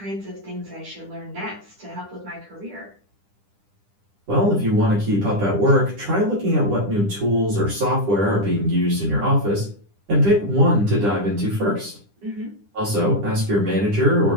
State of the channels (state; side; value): late; left; 10 ms